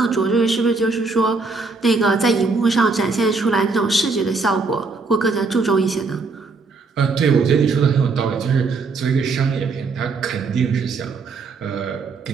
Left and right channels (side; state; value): left; quieter; 4.1 dB